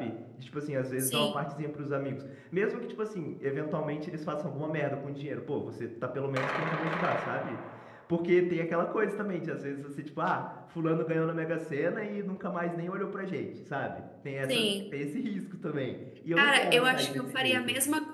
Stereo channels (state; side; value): identical; both; correlation 1.00